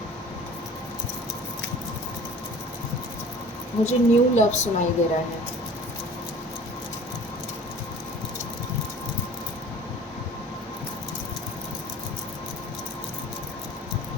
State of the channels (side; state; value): both; normal; correlation 0.45